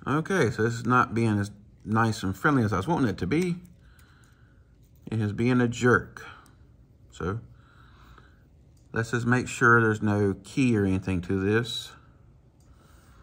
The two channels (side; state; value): both; identical; correlation 1.00